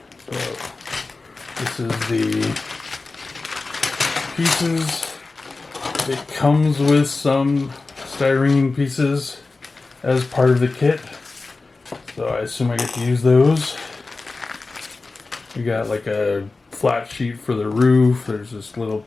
So this is the pieces. It comes with some styrene pieces as part of the kit, so I assume I get to use those. We got like a flat sheet for the roof. There's this little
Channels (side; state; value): right; quieter; 3.6 dB